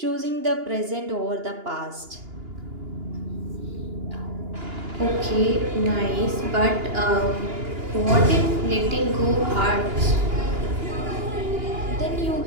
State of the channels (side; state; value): left; late; 2.9 ms